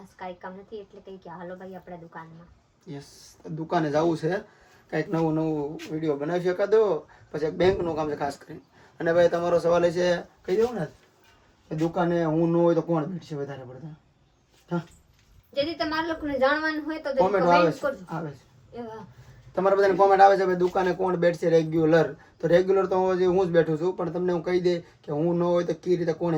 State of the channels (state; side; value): identical; both; correlation 1.00